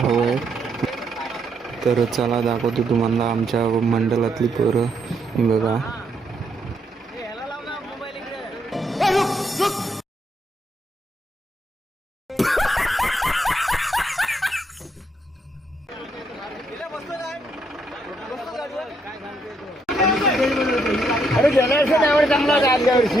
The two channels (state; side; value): normal; both; correlation 0.75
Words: आहे. तर चला दाखवतो तुम्हाला आमच्या मंडळातली पोरं. ही बघा अरे गेल्या वर्षी ड्रायव्हर चांगला होता. आदल्या वर्षी